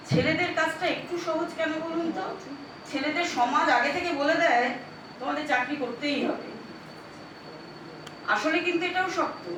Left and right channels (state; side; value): identical; both; correlation 1.00